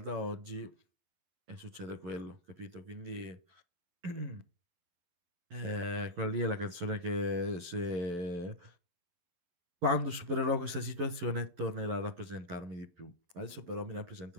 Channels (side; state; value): left; late; 11 ms